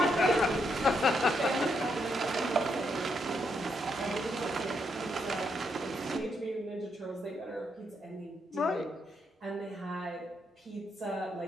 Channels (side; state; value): both; normal; correlation 0.78